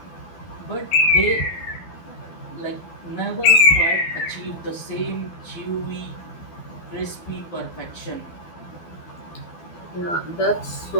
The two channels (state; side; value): late; right; 12 ms